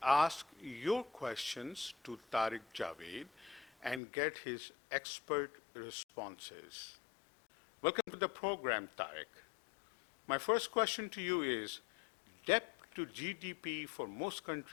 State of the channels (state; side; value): drops out; right; at 4.0 s